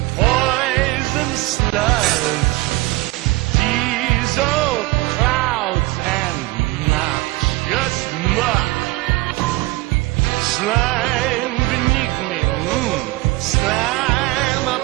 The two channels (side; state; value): left; quieter; 20.5 dB